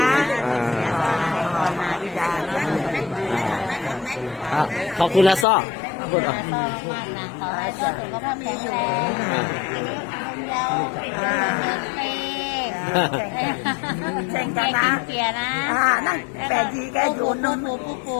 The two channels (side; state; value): right; drops out; at 5.5 s